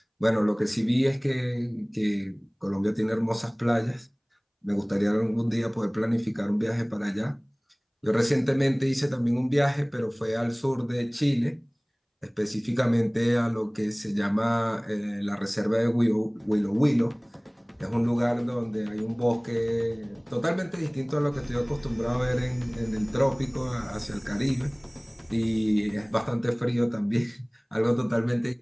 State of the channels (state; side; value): identical; both; correlation 1.00